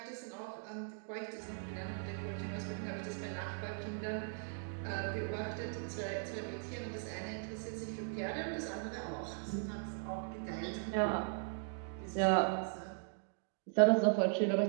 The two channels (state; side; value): silent; left; digital silence